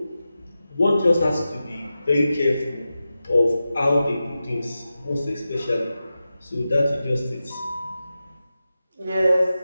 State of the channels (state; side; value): inverted; both; correlation -0.92